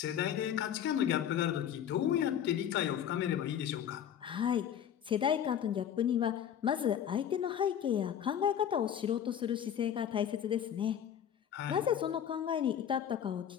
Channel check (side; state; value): right; quieter; 9.4 dB